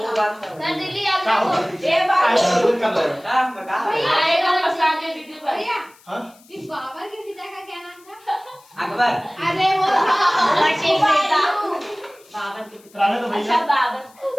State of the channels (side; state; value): left; noise; hiss, 28 dB below the sound